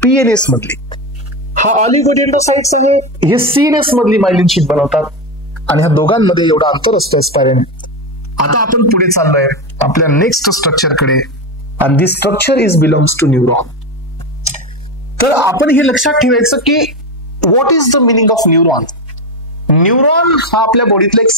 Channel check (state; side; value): normal; both; correlation 0.15